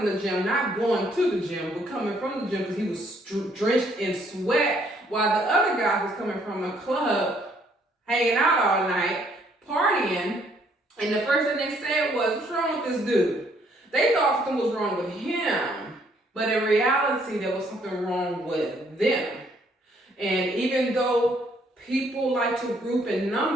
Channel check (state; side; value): normal; both; correlation 0.67